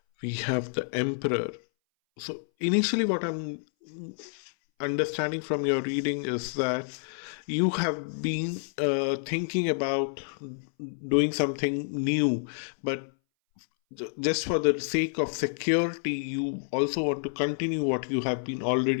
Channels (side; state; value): right; silent; 59 dB below the other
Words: We have the Emperor. So initially what I'm understanding from your reading is that you have been thinking about doing something new, but just for the sake of security, you also want to continue what you have been